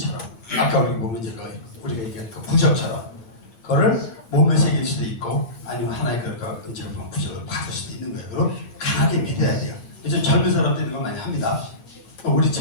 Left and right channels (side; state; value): right; late; 9.7 ms